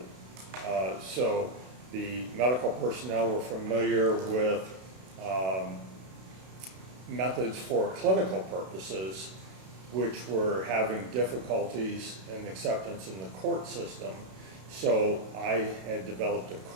So the medical personnel were familiar with methods for clinical purposes, which were having difficulties in acceptance in the court system. So I had developed a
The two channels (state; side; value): late; left; 32 ms